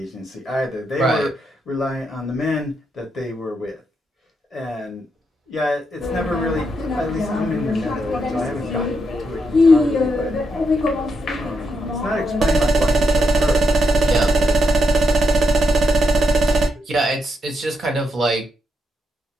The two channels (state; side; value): normal; both; correlation 0.82